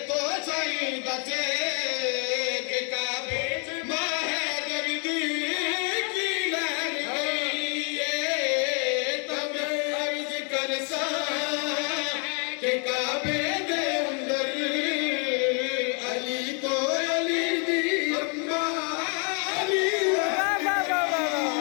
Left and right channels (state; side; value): quieter; right; 37.6 dB